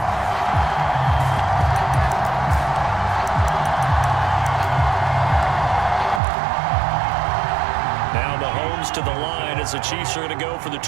To the line as the Chiefs are going to go for the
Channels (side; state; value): left; drops out; at 6.2 s